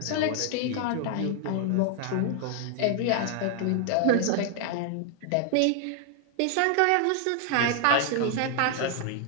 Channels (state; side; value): different; both; correlation 0.00